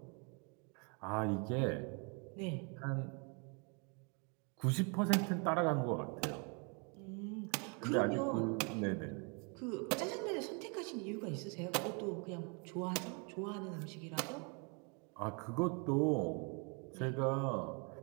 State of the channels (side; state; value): left; quieter; 35.0 dB